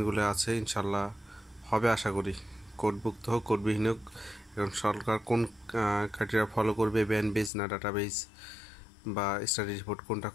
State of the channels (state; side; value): drops out; right; at 7.5 s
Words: আছে ইনশাল্লাহ হবে, আশা করি। কোডভুক্ত হোক কোডবিহীন হোক, এখন সরকার কোন ক্রাইটেরিয়া ফলো করবে, ব্যান্ড বেস না ডাটাবেস বা স্টাডি রিপোর্ট কোনটা